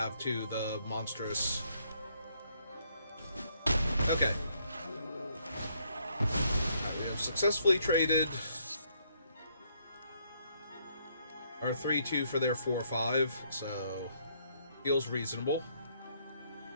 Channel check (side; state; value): both; inverted; correlation -0.70